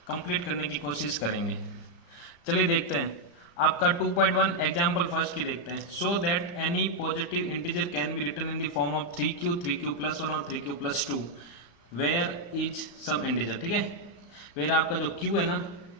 कंप्लीट करने की कोशिश करेंगे। चलिए देखते हैं। आपका 2.1 एग्जाम्पल फर्स्ट की देखते हैं। So that any positive integer can be written in the form of 3q, 3q+1 और 3q+2 where is some integer. ठीक है, वेयर आपका जो q है ना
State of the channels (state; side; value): late; right; 35 ms